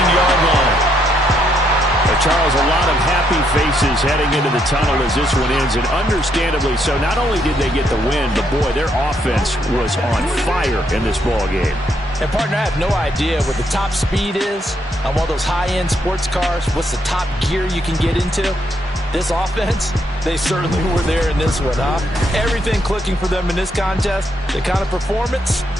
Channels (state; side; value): normal; both; correlation 0.75